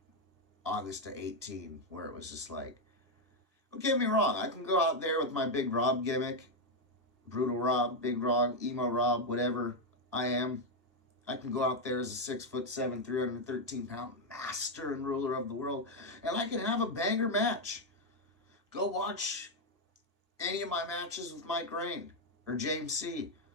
August to 18, where it was just like, don't get me wrong, I can go out there with my big Rob gimmick, Brutal Rob, Big Rob, Emo Rob, whatever I am. I can go out there as a 6'7", 313-pound master and ruler of the world, and I can have a banger match. Go watch any of my matches with Mike Rain or James C.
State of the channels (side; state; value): both; normal; correlation 0.02